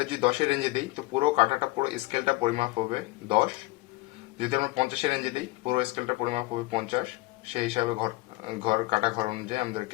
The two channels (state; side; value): quieter; right; 21.3 dB